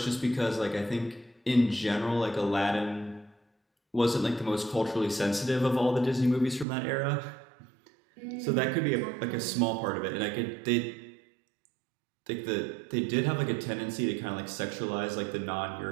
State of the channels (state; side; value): drops out; left; at 6.7 s